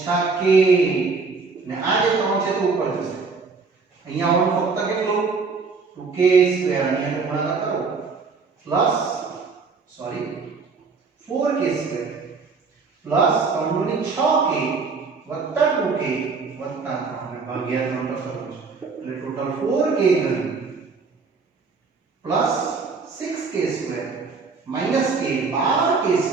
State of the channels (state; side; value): quieter; left; 4.6 dB